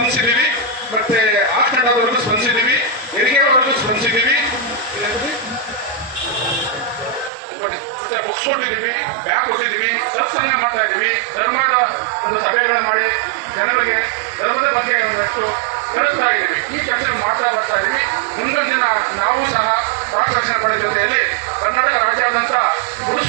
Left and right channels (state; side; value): drops out; left; at 7.3 s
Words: ಮತ್ತೆ ಆಸ್ಪೆಂಡವರೆಗೂ ಸ್ಪಂದಿಸಿದ್ದೀವಿ, ಹೆರಿಗೆವರೆಗೂ ಸ್ಪಂದಿಸಿದ್ದೀವಿ, ಬುಕ್ಸ್ ಕೊಟ್ಟಿದ್ದೀವಿ, ಬ್ಯಾಗ್ ಕೊಟ್ಟಿದ್ದೀವಿ, ಸತ್ಸಂಗ ಮಾಡ್ತಾ ಇದ್ದೀವಿ. ಧರ್ಮದ ಒಂದು ಸಭೆಗಳನ್ನ ಮಾಡಿ ಜನರಿಗೆ ಧರ್ಮದ ಬಗ್ಗೆ ಒಂದಷ್ಟು ಕಳಿಸ್ತಾ ಇದ್ದೀವಿ. ಈ ಕೆಲಸ ಮಾಡ್ತಾ ಬರ್ತಾ ಇದ್ದೀವಿ. ಮುಂದೊಂದು ದಿನ ನಾವು ಸಹ ರಾಷ್ಟ್ರ ಜೊತೆಯಲ್ಲಿ ಕರ್ನಾಟಕ ರಾಜ್ಯಾದ್ಯಂತ